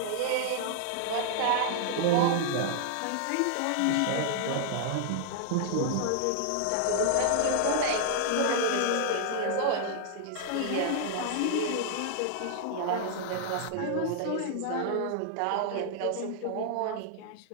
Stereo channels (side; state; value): both; different; correlation 0.00